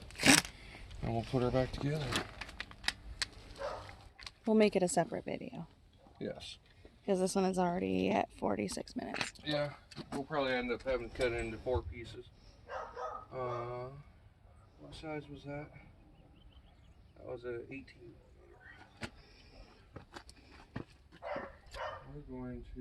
And we'll put her back together. We'll make it a separate video. Yes. Because this one is already at 46 minutes. Yeah, we'll probably end up having to cut it into 4 pieces. What size was that? That was a 18 millimeter. We're going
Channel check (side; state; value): both; identical; correlation 1.00